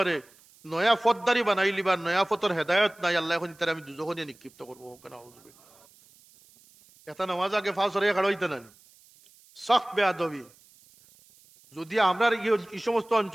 নয়া ফতদারি বানাইলি বা নয়া ফতর হেদায়ত নাই, আল্লাহ এখন তারা আমি দুজখনে নিক্ষিপ্ত করবো কেন? এটা নামাজ আগে ফাঁস হয়ে খাড়াইতে না সখ বেয়াদবি। যদি আমরা এই সমস্ত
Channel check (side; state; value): right; noise; hiss, 28 dB below the sound